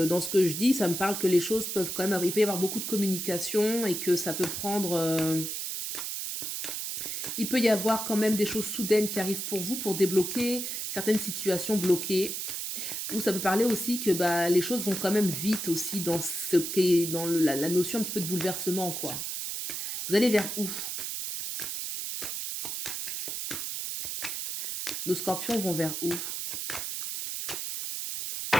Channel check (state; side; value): noise; right; hiss, 4 dB below the sound